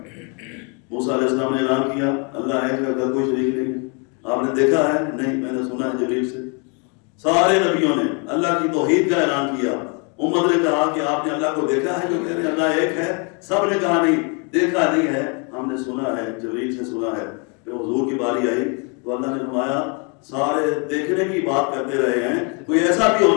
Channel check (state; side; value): quieter; right; 35.0 dB